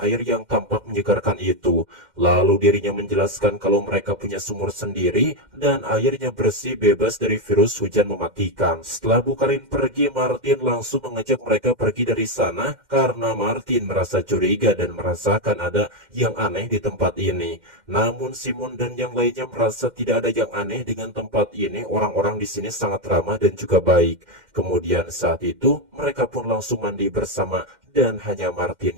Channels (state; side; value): late; left; 2.1 ms